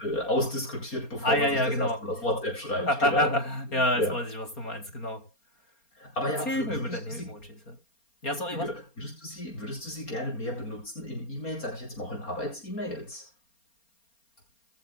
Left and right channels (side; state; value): right; late; 4.3 ms